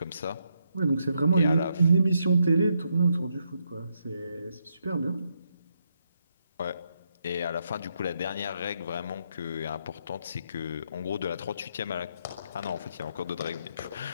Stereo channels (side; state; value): both; inverted; correlation -0.79